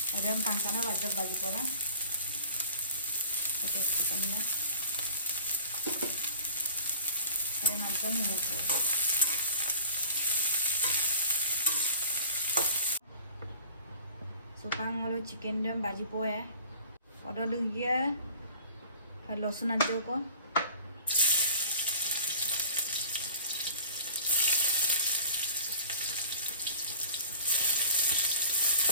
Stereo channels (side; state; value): both; inverted; correlation -0.45